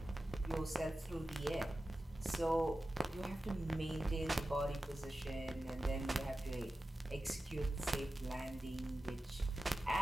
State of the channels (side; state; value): both; normal; correlation 0.94